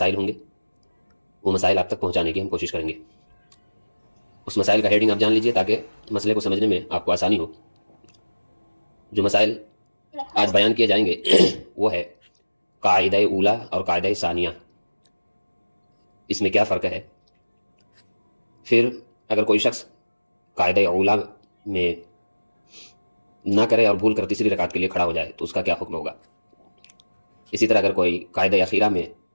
ہوں گے وہ مسائل آپ تک پہنچانے کی ہم کوشش کریں گے۔ اس مسائل کا ہیڈنگ آپ جان لیجئے تاکہ مسئلے کو سمجھنے میں آپ کو آسانی ہو۔ جو مسائل آج بیان کیے جائیں گے وہ ہے قاعدہ اولا اور قاعدہ ثانیہ، اس میں کیا فرق ہے۔ پھر اگر کوئی شخص قاعدہ اولا میں نہ کرے اور بھول کر تیسری رکعت کے لیے کھڑا ہو جائے تو اس کا کیا حکم ہوگا۔ اسی طرح اگر کوئی قاعدہ اخیرہ میں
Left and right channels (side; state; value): both; inverted; correlation -1.00